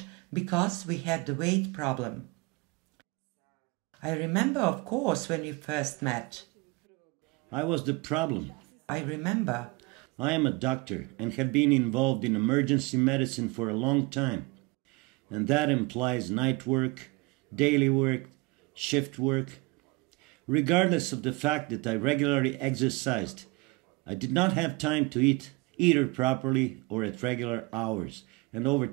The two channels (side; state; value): left; quieter; 26.0 dB